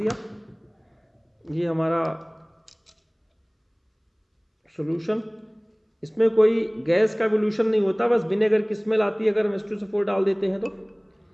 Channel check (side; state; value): both; identical; correlation 1.00